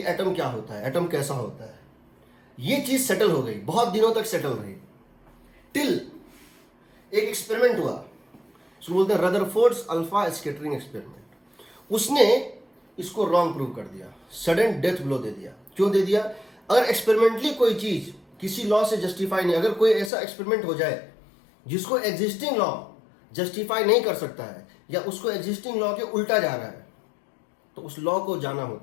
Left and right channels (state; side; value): drops out; right; at 20.1 s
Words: एटम क्या होता है, एटम कैसा होता है। ये चीज सेटल हो गई, बहुत दिनों तक सेटल रही, टिल एक एक्सपेरिमेंट हुआ, उसको बोलते हैं रदरफोर्ड्स अल्फा स्कैटरिंग एक्सपेरिमेंट। उसने इसको रॉन्ग प्रूव कर दिया, सडन डेथ ब्लो दे दिया। क्यों दे दिया? अगर एक्सपेरिमेंटली कोई चीज किसी लॉ से जस्टिफाई नहीं, अगर कोई ऐसा एक्सपेरिमेंट हो जाए जिसको एग्जिस्टिंग लॉ जस्टिफाई नहीं कर सकता है या उसको एग्जिस्टिंग लॉ के उल्टा जा रहा है, तो उस लॉ को जाना